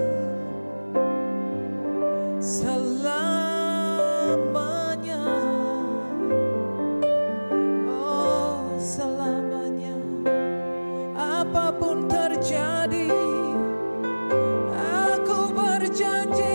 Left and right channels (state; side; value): inverted; both; correlation -1.00